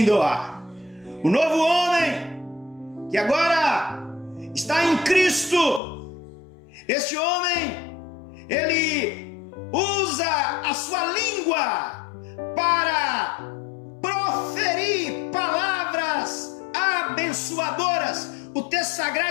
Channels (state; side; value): drops out; right; at 5.8 s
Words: doar. O novo homem que agora está em Cristo, este homem, ele usa a sua língua para proferir palavras abençoadoras. O texto